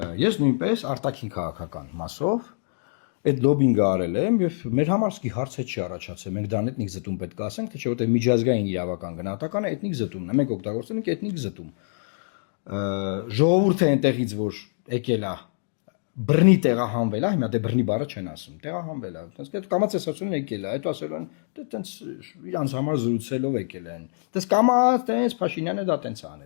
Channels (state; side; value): silent; right; digital silence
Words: ես նույնպես արտաքին քաղաքական մասով այդ լոբինգը արել եմ եւ մեր համար սկի հարց է չի առաջացել։ Մենք դրան էթնիկ զտում պետք է ասենք, թե չէ, որտեղ միջազգային իրավական գնահատականը էթնիկ զտումն է։ Մենք օգտագործում ենք էթնիկ զտում։ Ժողովուրդը այնտեղից որ եկել է բռնի տեղահանվել է, հիմա դե բռնի բառը չեն ասում, տեղահանվել է։ Այդպես այդ կամացեսացումն եկել է, հետո ասելու են, դե տենց իրանց համար զրուցելով եկել են։ Դες կամաց տենց Փաշինյանը դա տենց